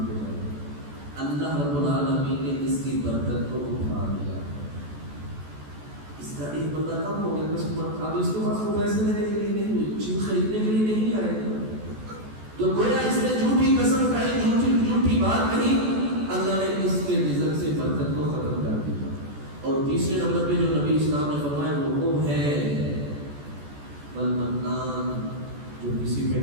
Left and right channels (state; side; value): late; left; 14 ms